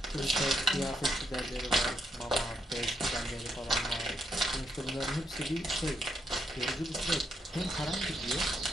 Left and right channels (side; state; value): both; normal; correlation 0.78